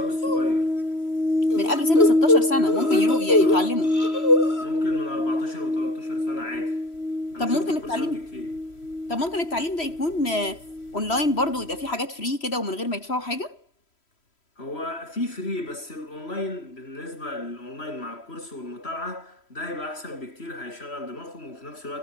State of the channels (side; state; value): right; late; 3.1 ms